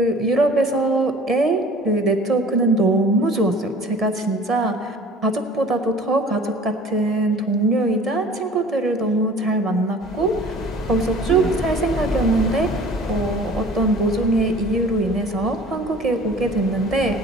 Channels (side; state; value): both; normal; correlation 0.47